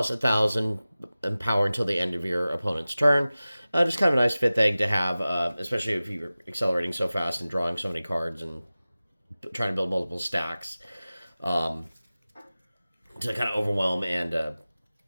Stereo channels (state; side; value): inverted; both; correlation -0.97